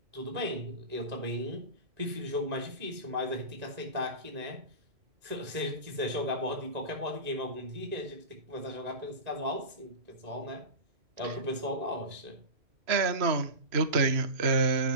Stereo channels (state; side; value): late; left; 3.0 ms